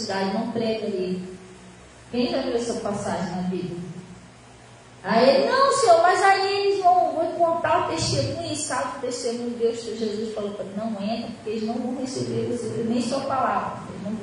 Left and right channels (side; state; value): both; identical; correlation 1.00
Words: não prega ali. Quem já viu essa passagem na Bíblia? Aí ele, não, Senhor, mas aí eles vão contar o testemunho, e sabe o testemunho de Deus que Jesus falou para ele, não entra, porque eles não vão receber nem sua palavra, eles não